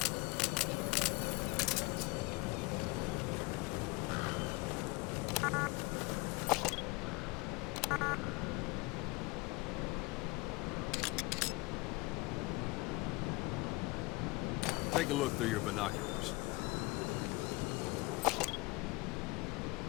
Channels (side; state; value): right; quieter; 25.0 dB